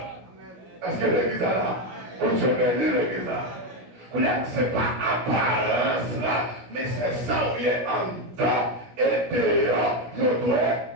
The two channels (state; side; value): late; left; 16 ms